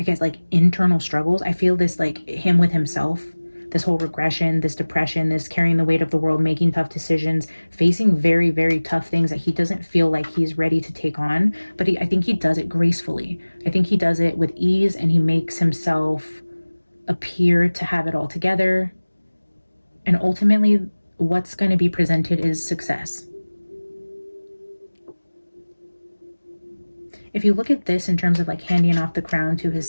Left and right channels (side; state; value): both; inverted; correlation -1.00